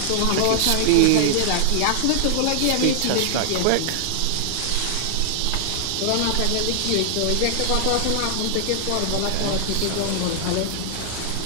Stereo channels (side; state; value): both; different; correlation -0.01